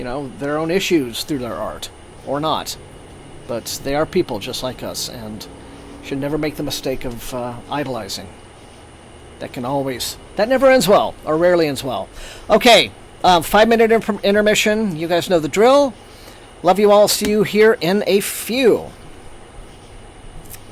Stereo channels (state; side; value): identical; both; correlation 1.00